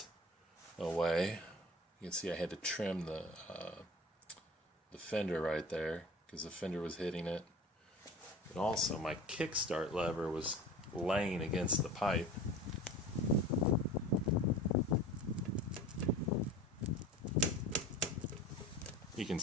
away. You can see I had to trim the fender right there because the fender was hitting it. And also my kickstart lever was laying against the pipe. You can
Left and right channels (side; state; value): both; normal; correlation 0.38